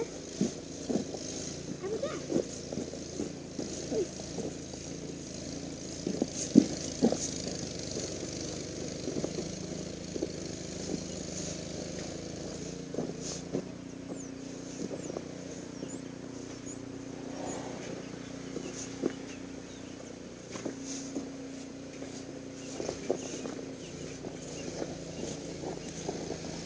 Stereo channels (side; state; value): both; identical; correlation 1.00